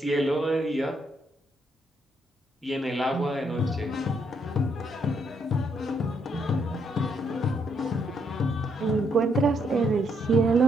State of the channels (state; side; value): normal; both; correlation 0.74